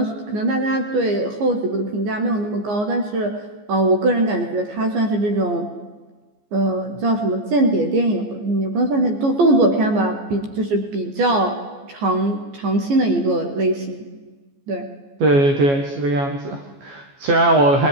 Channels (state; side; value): late; left; 14 ms